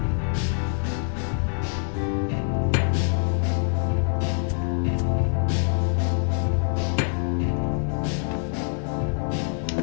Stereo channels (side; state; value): right; silent; 56 dB below the other